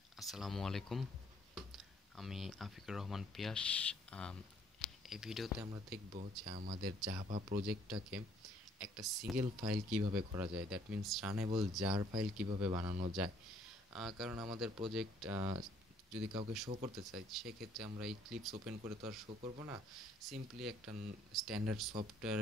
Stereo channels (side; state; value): both; normal; correlation 0.63